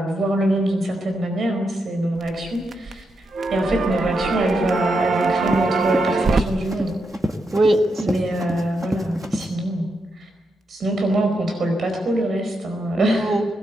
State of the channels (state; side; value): normal; both; correlation 0.84